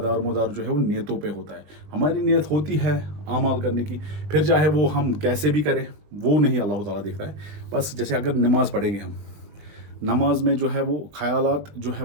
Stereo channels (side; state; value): left; late; 20 ms